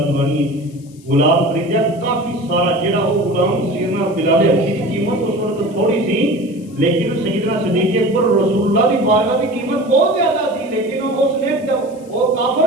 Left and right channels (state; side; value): noise; left; hiss, 27 dB below the sound